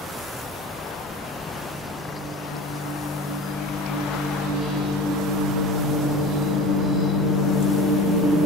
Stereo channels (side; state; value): both; normal; correlation 0.36